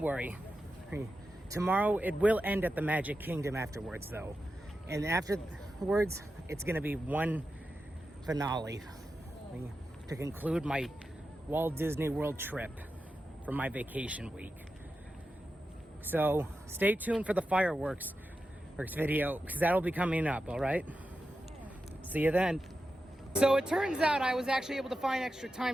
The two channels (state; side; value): normal; both; correlation 0.90